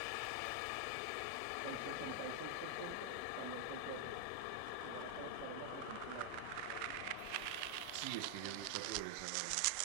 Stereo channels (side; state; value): both; different; correlation 0.00